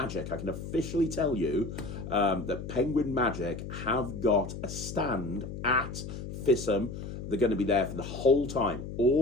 I can officially tell you that Penguin Magic have got a stand at FISM. They're going to be there for the whole time,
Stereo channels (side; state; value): left; noise; hum, 8 dB below the sound